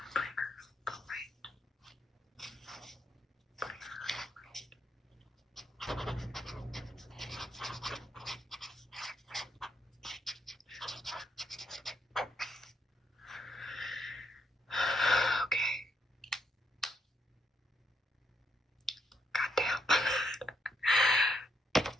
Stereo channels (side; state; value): both; normal; correlation 0.77